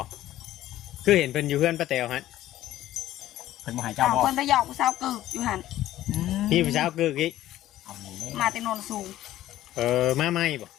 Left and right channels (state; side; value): quieter; right; 13.9 dB